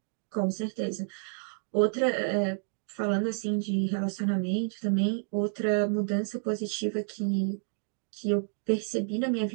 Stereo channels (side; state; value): left; silent; digital silence